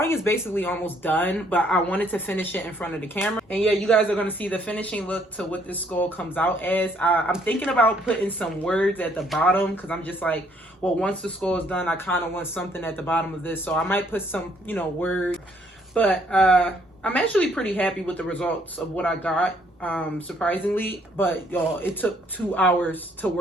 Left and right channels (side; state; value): both; normal; correlation 0.66